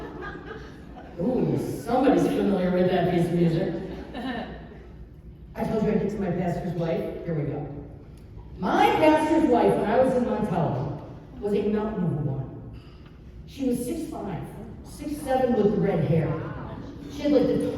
Ooh, somebody's familiar with that piece of music. I told you I'd get to my pastor's wife. Here we go. My pastor's wife, when I was in Montello, was a mountain of a woman. She was 6'5", 6'7" with red hair. She had like the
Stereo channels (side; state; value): both; identical; correlation 1.00